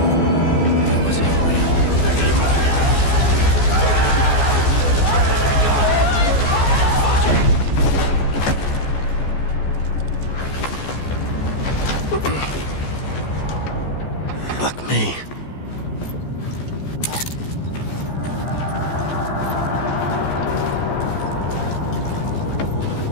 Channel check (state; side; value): late; right; 14 ms